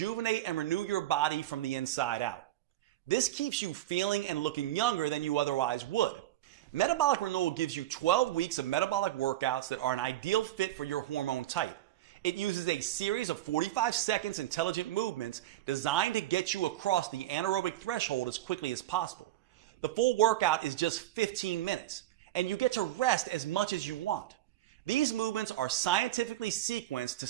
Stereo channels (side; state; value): left; quieter; 14.3 dB